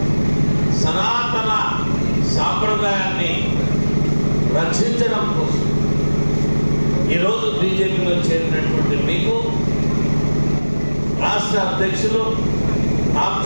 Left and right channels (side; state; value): both; inverted; correlation -1.00